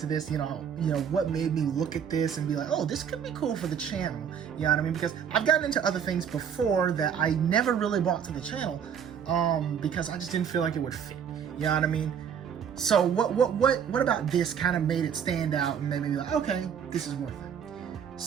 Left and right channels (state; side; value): quieter; left; 7.9 dB